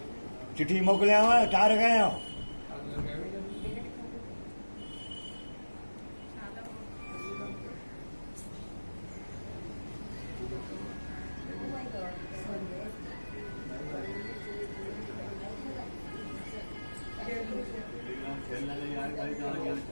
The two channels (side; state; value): both; inverted; correlation -1.00